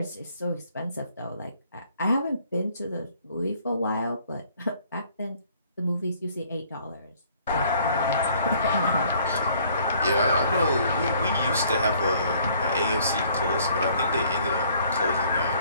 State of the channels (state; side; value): inverted; both; correlation -0.60